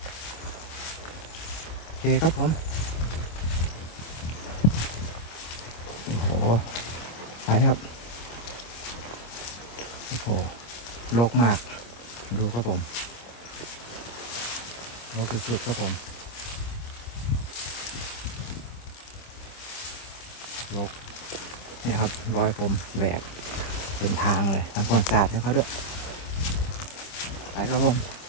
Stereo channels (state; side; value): late; right; 25 ms